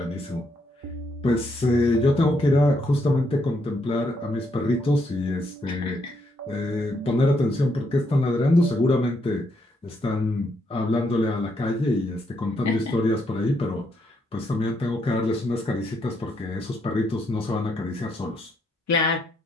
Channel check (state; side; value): normal; both; correlation 0.76